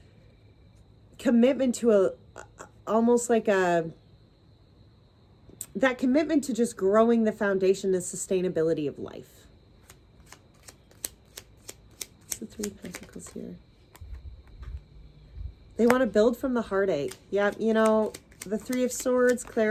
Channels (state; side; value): identical; both; correlation 1.00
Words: commitment to almost like that commitment to just growing the foundation and sustainability of life. What's the Three of Pentacles here? They want to build from the heartache. Yeah, you know, the Three of Swords